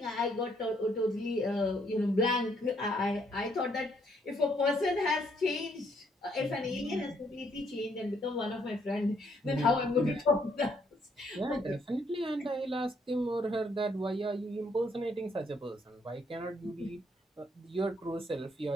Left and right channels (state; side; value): normal; both; correlation 0.70